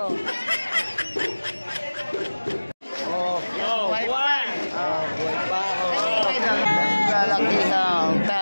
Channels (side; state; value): both; inverted; correlation -1.00